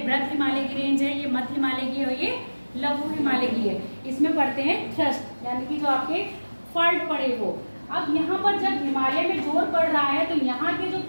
हिमालय की रेंज है, ये मध्य हिमालय की है, ये लघु हिमालय की है। इसमें पढ़ते हैं थ्रस्ट, यानी कि जो आपके फॉल्ट पड़े वो। अब यहाँ पर जब हिमालय में जोर पड़ रहा है तो यहाँ के जो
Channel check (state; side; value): inverted; both; correlation -1.00